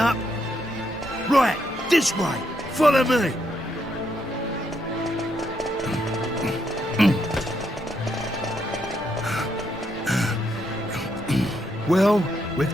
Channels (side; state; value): both; normal; correlation 0.77